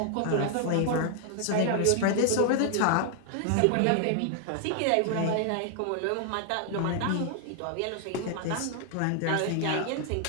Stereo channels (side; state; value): both; different; correlation 0.00